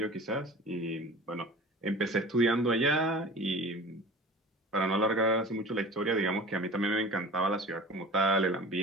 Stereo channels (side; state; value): both; normal; correlation 0.39